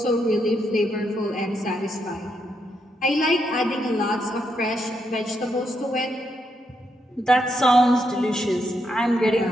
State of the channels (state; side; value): normal; both; correlation 0.79